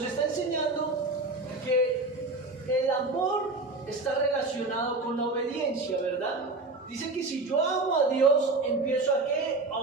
está enseñando que el amor está relacionado con la obediencia, ¿verdad? Dice que si yo amo a Dios, empiezo ¿a qué?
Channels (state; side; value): quieter; left; 3.2 dB